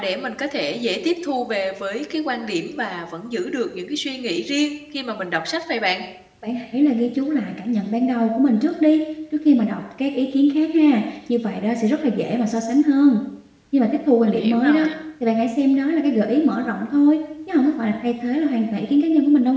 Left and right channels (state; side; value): identical; both; correlation 1.00